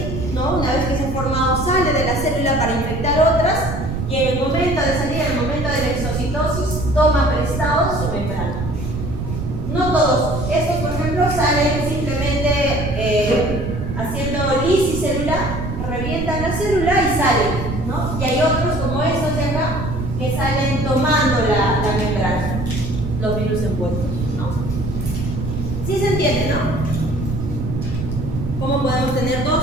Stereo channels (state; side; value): noise; right; rumble, 5 dB below the sound